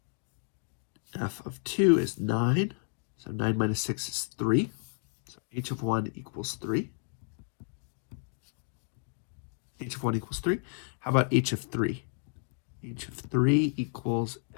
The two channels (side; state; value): right; silent; 56 dB below the other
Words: F of 2 is 9. So 9 minus 6 is 3. So h of 1 equals 3. H of 1 equals 3. How about h of 3? H of 3 equals